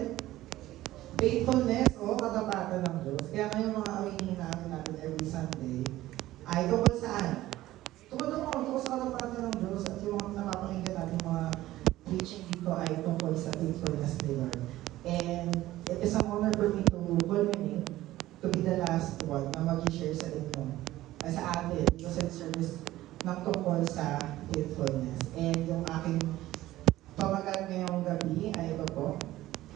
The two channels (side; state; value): left; quieter; 15.7 dB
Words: Faithfulness o katapatan ng Diyos. Kaya ngayon mga awingin natin every Sunday ay tungkol saan? Tungkol sa katapatan ng Diyos at yung mga napapakinggan natin mga preaching dito ay tungkol sa faithfulness ni Lord. And it is an honor for me to culminate to be the last one na mag-share sa inyo sa atin dito sa service ng tungkol sa faithfulness. And yung aking pamagat ngayong gabi ay ito po.